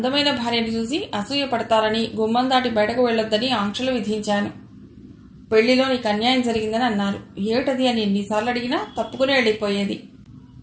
భార్యను చూసి అసూయ పడతారని గుమ్మం దాటి బయటకు వెళ్లొద్దని ఆంక్షలు విధించాను. పెళ్లిలో నీకు అన్యాయం జరిగిందని అన్నారు. ఏమిటది అని ఎన్నిసార్లు అడిగినా తప్పుకుని వెళ్ళిపోయేది.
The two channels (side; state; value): both; identical; correlation 1.00